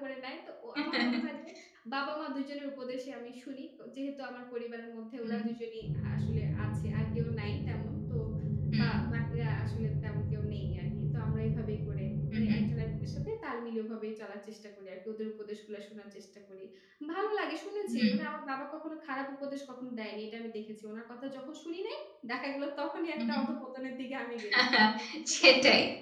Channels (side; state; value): both; identical; correlation 1.00